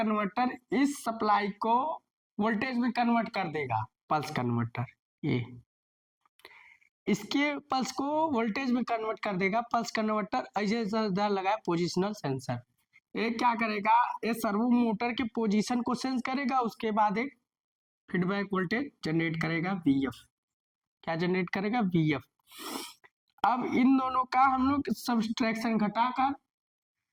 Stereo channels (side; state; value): both; identical; correlation 1.00